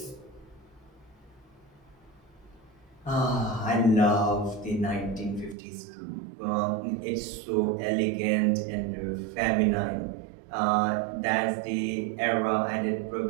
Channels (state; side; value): drops out; left; at 5.6 s